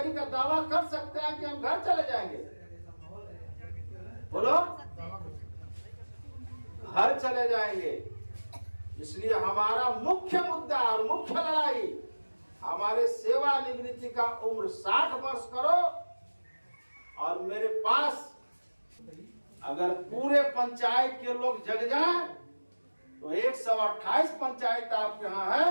का दावा कर सकते हैं कि हम घर चले जाएंगे। बोलो, घर चले जाएंगे। इसलिए हमारा मुख्य मुद्दा और मुख्य लड़ाई, हमारे सेवानिवृत्ति का उम्र 60 वर्ष करो। और मेरे पास अगर पूरे पंचायत के लोग जग जाएं तो 128 पंचायत आपके यहाँ है।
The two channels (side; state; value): both; inverted; correlation -1.00